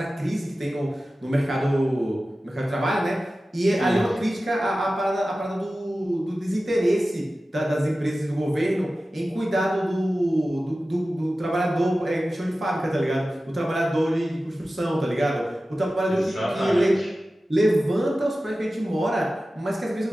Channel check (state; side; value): normal; both; correlation 0.95